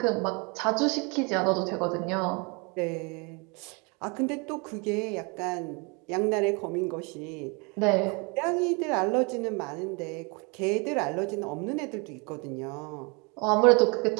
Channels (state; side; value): quieter; left; 31.3 dB